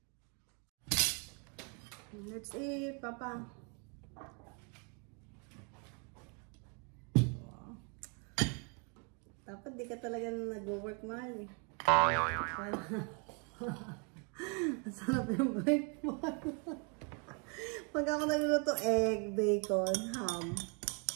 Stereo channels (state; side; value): quieter; left; 36.6 dB